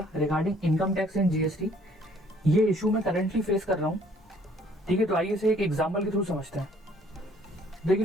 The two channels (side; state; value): both; normal; correlation 0.60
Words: regarding income tax and GST. ये इशू मैं करंटली फेस कर रहा हूँ। ठीक है, तो आइए इसे एक एग्जांपल के थ्रू समझते हैं।